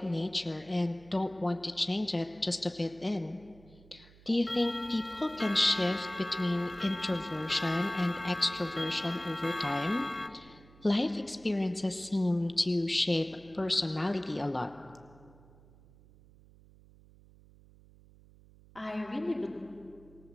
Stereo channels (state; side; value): noise; right; hum, 24 dB below the sound